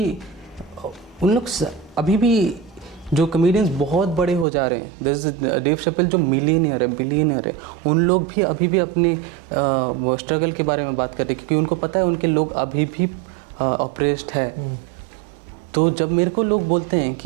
उन लोग अभी भी जो कॉमेडियंस बहुत बड़े हो जा रहे हैं, जैसे डेव शपेल जो मिलियनियर है, बिलियनियर है, उन लोग भी अभी भी अपने स्ट्रगल के बारे में बात कर रहे हैं, क्योंकि उनको पता है उनके लोग अभी भी ऑप्रेस्ड है। तो जब मेरे को लोग बोलते हैं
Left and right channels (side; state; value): left; drops out; at 4.5 s